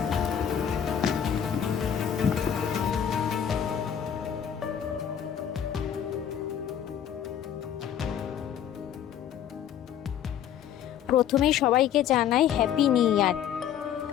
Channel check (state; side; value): quieter; right; 9.3 dB